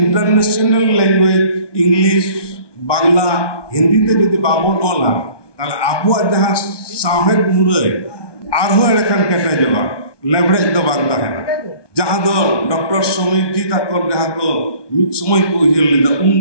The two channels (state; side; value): late; right; 1.2 ms